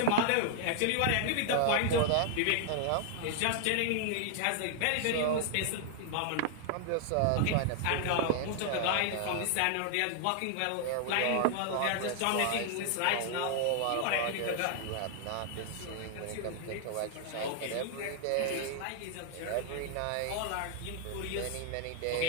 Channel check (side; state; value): both; different; correlation 0.00